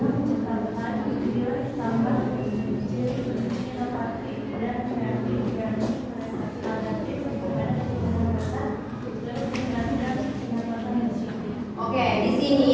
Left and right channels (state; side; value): identical; both; correlation 1.00